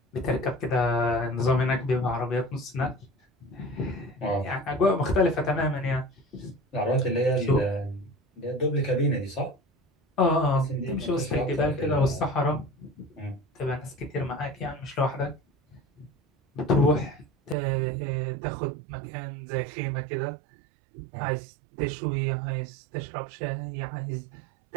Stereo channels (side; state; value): left; drops out; at 17.6 s